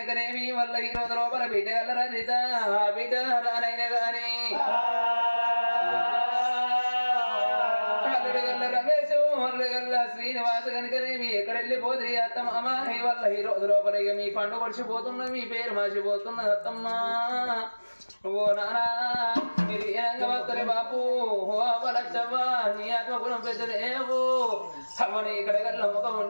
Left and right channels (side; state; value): both; inverted; correlation -1.00